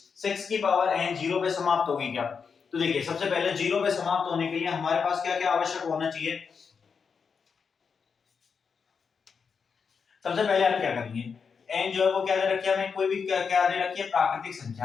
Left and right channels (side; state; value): right; quieter; 5.9 dB